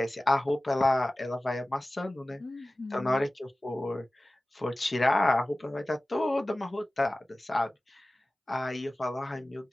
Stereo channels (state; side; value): normal; both; correlation 0.97